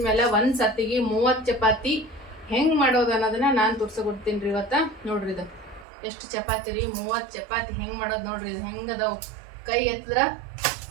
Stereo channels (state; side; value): drops out; left; at 5.9 s